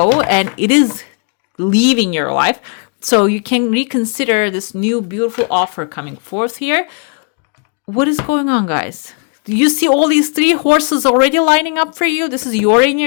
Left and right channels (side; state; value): right; quieter; 39.2 dB